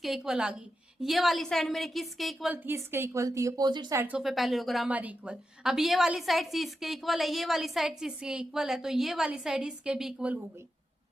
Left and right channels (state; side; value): normal; both; correlation 0.89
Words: इक्वल आ गई। ये वाली साइड मेरे किसके इक्वल थी, इसके इक्वल थी। Opposite sides of a parallelogram are equal. अब ये वाली साइड सी इसके इक्वल है, ये वाली साइड सी इसके इक्वल है, तो ये वाली साइड इसके भी इक्वल हो गई।